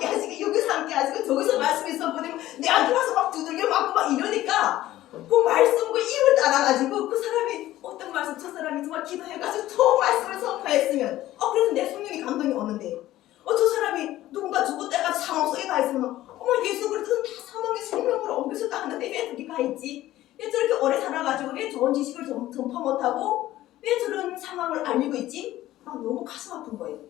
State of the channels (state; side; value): quieter; right; 14.9 dB